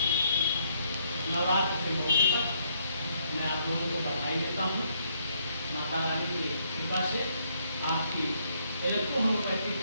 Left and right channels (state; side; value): inverted; both; correlation -0.71